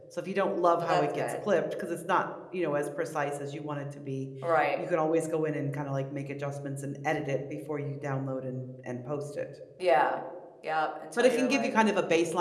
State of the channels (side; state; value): both; identical; correlation 1.00